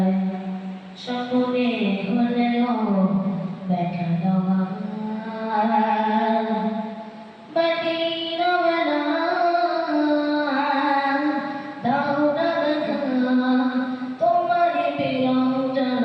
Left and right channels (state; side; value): identical; both; correlation 1.00